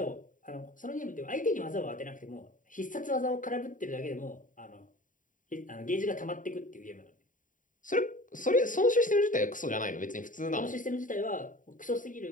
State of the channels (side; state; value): right; late; 0.38 ms